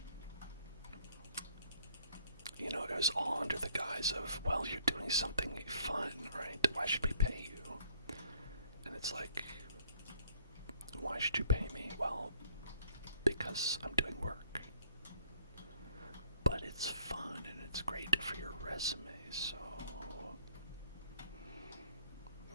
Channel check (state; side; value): inverted; both; correlation -0.62